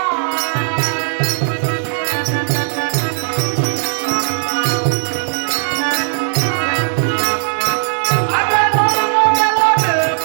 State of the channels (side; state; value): left; silent; digital silence